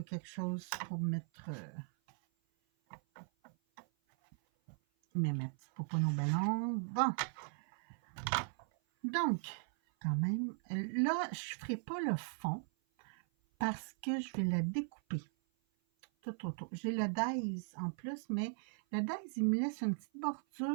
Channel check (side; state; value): left; silent; 52 dB below the other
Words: quelque chose pour mettre... ma petite poupon au ballon. Bon. Donc, quand même, là, je ne ferai pas le fond parce que je vais la découper tout autour. J'ai le Days en plus, mais le Days, il me laisse une petite